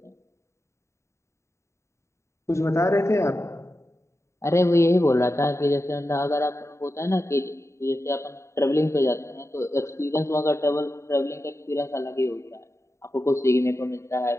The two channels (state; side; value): late; right; 0.14 ms